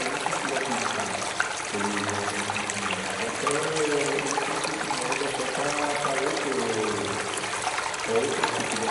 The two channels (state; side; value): identical; both; correlation 1.00